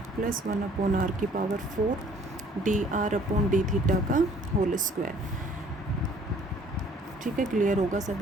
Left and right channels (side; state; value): both; normal; correlation 0.57